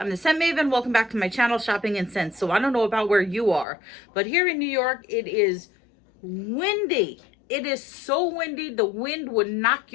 the Scent Maven. Welcome back to my channel, Shopping in Scents. So I don't know about where you are, but here in New York, it is windy. It is so windy, the wind would knock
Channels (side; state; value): right; drops out; at 3.7 s